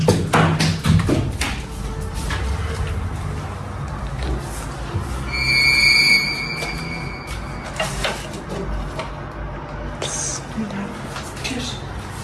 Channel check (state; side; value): identical; both; correlation 1.00